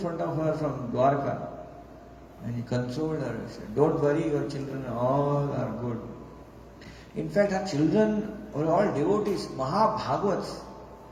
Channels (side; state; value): both; identical; correlation 1.00